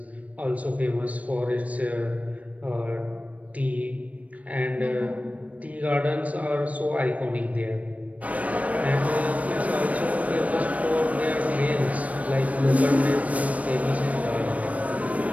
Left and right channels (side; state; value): left; late; 0.068 ms